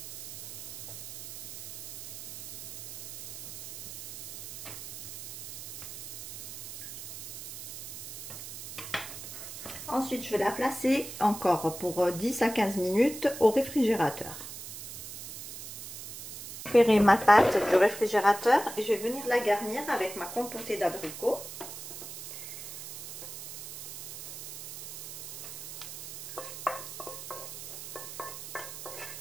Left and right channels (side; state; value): right; noise; hiss, 11 dB below the sound